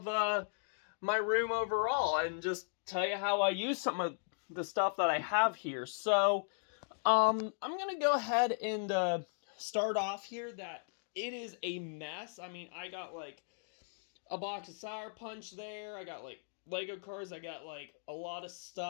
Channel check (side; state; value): right; silent; digital silence